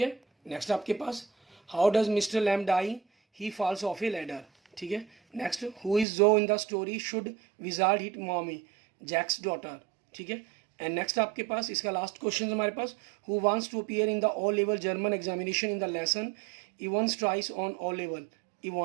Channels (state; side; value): drops out; left; at 6.1 s